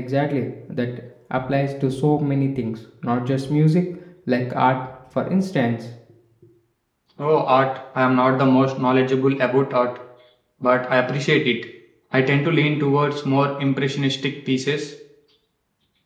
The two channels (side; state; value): both; identical; correlation 1.00